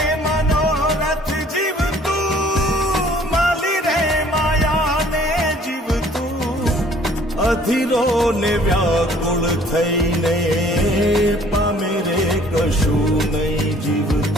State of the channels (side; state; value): both; normal; correlation 0.56